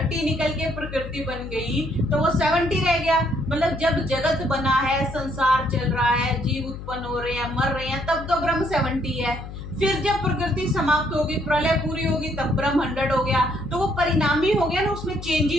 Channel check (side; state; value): left; noise; hum, 11 dB below the sound